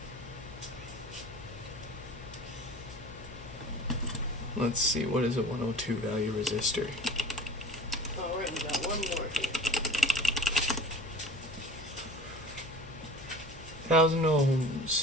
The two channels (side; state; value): left; noise; hum, 17 dB below the sound